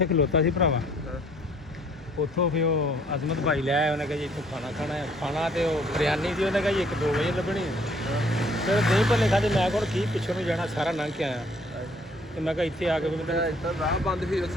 ਖਲੋਤਾ ਸੀ ਭਰਾਵਾ। ਉੱਥੋਂ ਫਿਰ ਉਹ ਅਜ਼ਮਤ ਭਾਈ ਲੈ ਆਇਆ। ਉਹਨੇ ਕਿਹਾ ਜੀ ਇੱਥੋਂ ਖਾਣਾ ਖਾਣਾ ਹੈ। ਖਾਣਾ ਤੇ ਉਹ ਬਿਰਿਆਨੀ ਦੀ ਉਹਨੇ ਕਿਹਾ ਜੀ 1-2 ਵਜੇ ਲੱਭਣੀ ਹੈ। ਫਿਰ ਦਹੀਂ ਭੱਲੇ ਖਾਦੇ। ਮੈਂ ਕੋਲ ਕੀ ਪਿੱਛੋਂ ਨੂੰ ਜਾਣਾ ਸਾਰਾ ਲੰਘ ਕੇ ਆਇਆ ਤੇ ਮੈਂ ਕਿਹਾ ਇੱਥੇ ਆ ਕੇ ਰਾਹ ਬੰਦ ਸੀ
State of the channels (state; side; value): normal; both; correlation 0.61